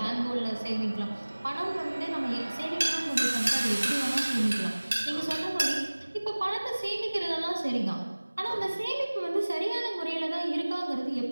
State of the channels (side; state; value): both; inverted; correlation -1.00